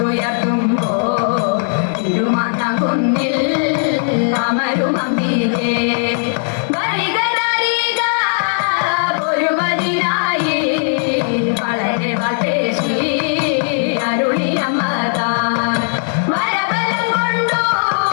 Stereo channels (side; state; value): right; silent; digital silence